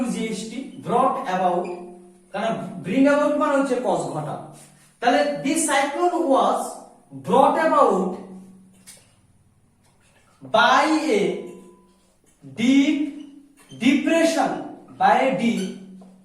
ব্রট অ্যাবাউট, কারণ ব্রিং অ্যাবাউট মানে হচ্ছে কজ ঘটা। তাহলে this cyclone was ব্রট about by a deep depression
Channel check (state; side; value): identical; both; correlation 1.00